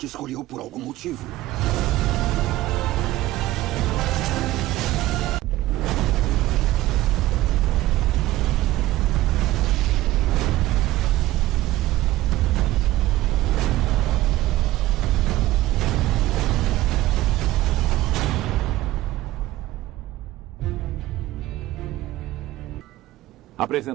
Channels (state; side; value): quieter; left; 16.1 dB